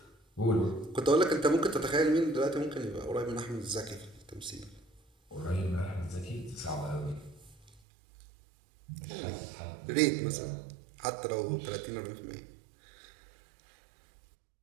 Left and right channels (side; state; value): left; drops out; at 7.8 s